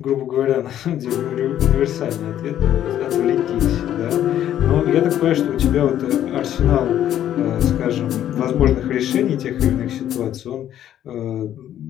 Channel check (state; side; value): quieter; right; 11.2 dB